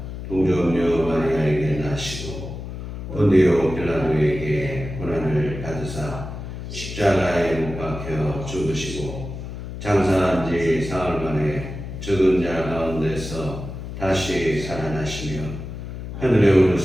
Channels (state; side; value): noise; left; hum, 8 dB below the sound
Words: 동정녀 마리아에게 나시고 본디오 빌라도에게 고난을 받으사 십자가에 못 박혀 죽으시고 장사한 지 사흘 만에 죽은 자 가운데서 다시 살아나시며 하늘에